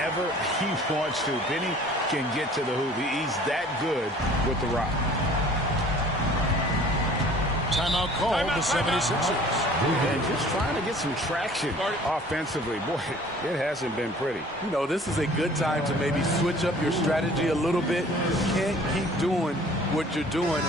he wants to, Benny can get to the hoop. He's that good with the rock. Timeout called the 76ers. And just trying to get some traction offensively. Boy, it hasn't been pretty. You know, this is a good time to maybe switch up your strategy a little bit. You can't keep doing what you're doing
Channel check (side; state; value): both; normal; correlation 0.50